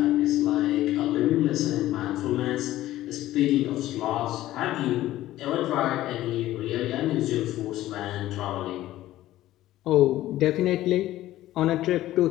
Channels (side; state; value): right; quieter; 14.8 dB